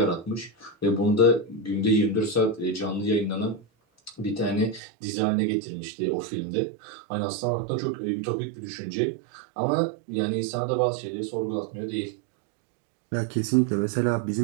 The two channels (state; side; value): drops out; left; at 4.8 s